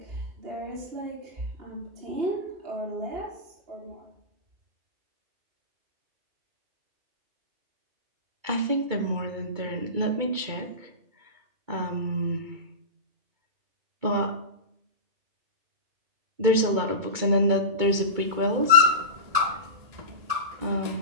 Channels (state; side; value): late; left; 2.3 ms